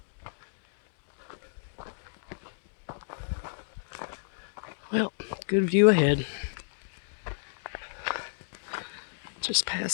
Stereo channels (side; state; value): right; silent; digital silence